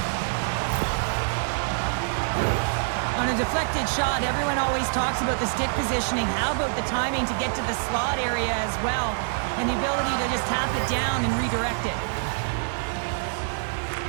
On a deflected shot, everyone always talks about the stick positioning. How about the timing to get to the slot area as well? And the ability to just tap it down and redirect it.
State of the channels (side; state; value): left; silent; digital silence